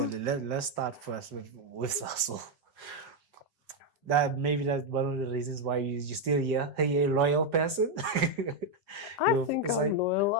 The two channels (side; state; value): both; normal; correlation 0.02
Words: let's start first with Sasol. That's one of the reasons why you're still here. Are you a loyal person? I think I'm loyal.